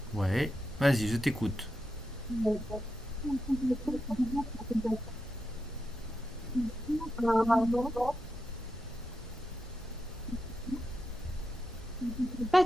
Ouais, vas-y, je t'écoute. pas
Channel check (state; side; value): normal; both; correlation 0.87